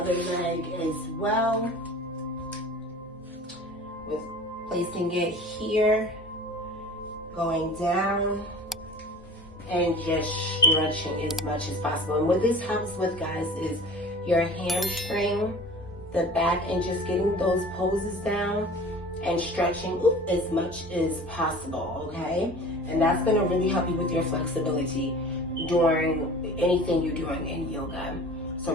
leg as well, with placing it here, going down, and just stretching as much as possible. And what this helps with, guys, is your hamstring, the back, and just getting those poses down and stretching as much as possible, okay? And that's gonna really help you with your flexibility during anything you're doing in yoga. So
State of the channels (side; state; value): both; normal; correlation 0.41